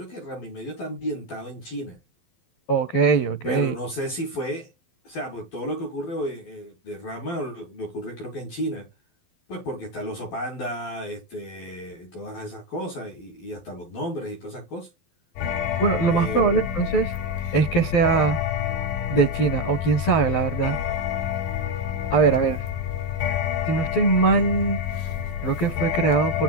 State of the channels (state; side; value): late; right; 12 ms